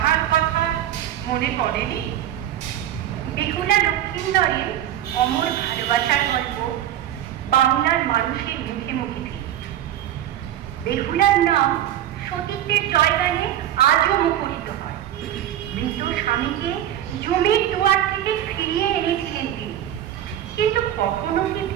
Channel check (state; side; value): quieter; left; 11.7 dB